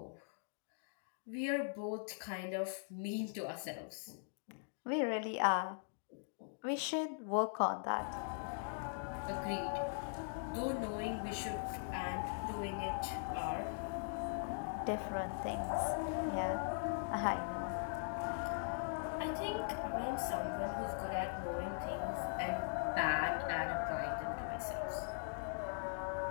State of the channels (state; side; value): silent; right; digital silence